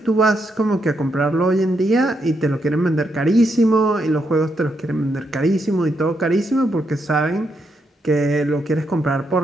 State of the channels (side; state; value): both; normal; correlation 0.80